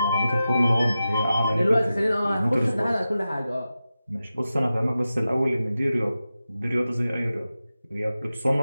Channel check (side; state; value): both; inverted; correlation -0.93